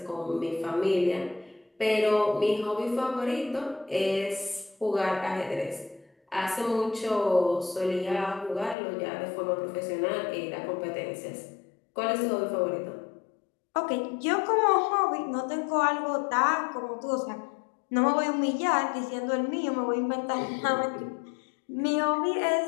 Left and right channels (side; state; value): right; drops out; at 8.8 s